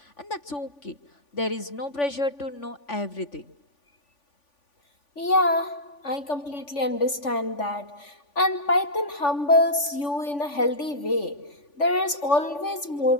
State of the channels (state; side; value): late; right; 3.5 ms